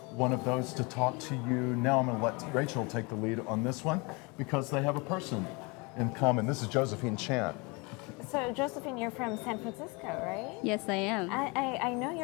one of those to talk to you now. I'm going to let Rachel take the lead on this one because they have a person in common. This is Josephine Chan. So Josephine, you're from San Francisco, right? Yes, I am. I know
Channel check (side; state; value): right; quieter; 28.4 dB